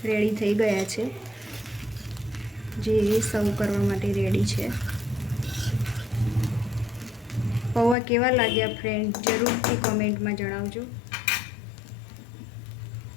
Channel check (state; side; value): drops out; right; at 8.0 s